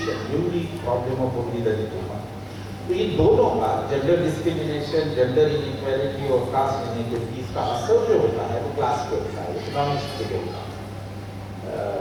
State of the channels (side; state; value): both; identical; correlation 1.00